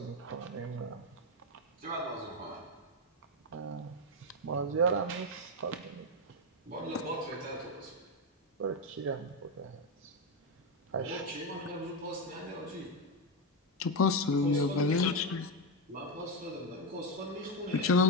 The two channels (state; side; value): normal; both; correlation 0.09